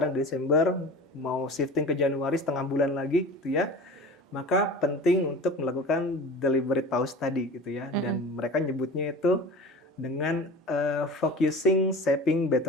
Desember mau shifting ke Januari setengah bulan lagi, gitu ya, maka penting untuk melakukan deliberate pause tadi, gitu ya, dan mereka nyebutnya itu dengan focusing shaping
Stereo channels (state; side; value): normal; both; correlation 0.37